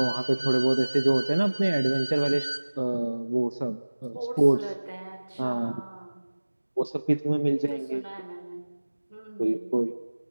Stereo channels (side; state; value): both; inverted; correlation -1.00